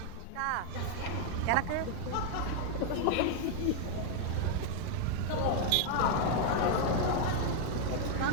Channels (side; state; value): both; different; correlation 0.00